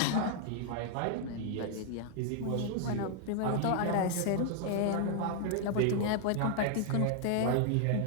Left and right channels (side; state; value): both; different; correlation 0.00